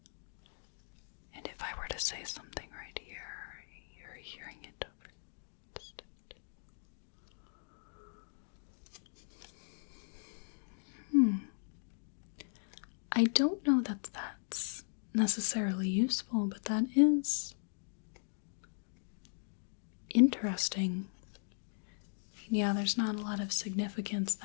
And if I were to say something right here, you're hearing it over distant. I don't know that that's necessarily useful, but that is interesting. Yeah, there's not a lot of significance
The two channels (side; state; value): right; silent; digital silence